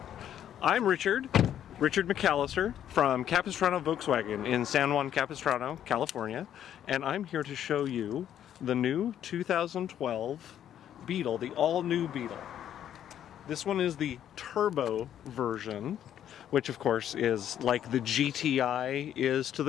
I'm Richard McAllister from Capistrano Volkswagen in San Juan Capistrano, California, and I'm here to show you the new 2012 Beetle, the all-new Beetle. This one is the turbo version, which of course is like the GTI is to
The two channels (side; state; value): right; quieter; 10.4 dB